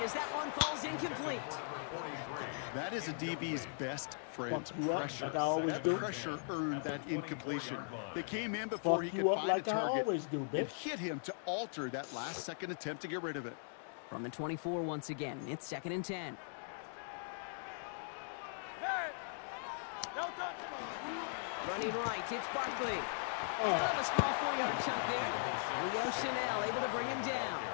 as that one falls incomplete. That is a DB's best friend, Fuck you up pressure. like I always That do. pressure earned that incompletion. They came in before Fuck he could you up find like a I target always do, and bitch. hit him to alter that last-second attempt to get rid of it. From the 24 once again, it's 2nd and 10. Hey. Don't touch. Running right, it's Barkley. Oh. Out of a small 4-yard chunk there. Leo Chanel able to bring him down.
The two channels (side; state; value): right; silent; digital silence